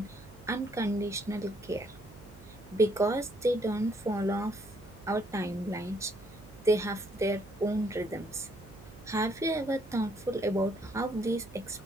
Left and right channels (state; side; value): noise; right; hum, 20 dB below the sound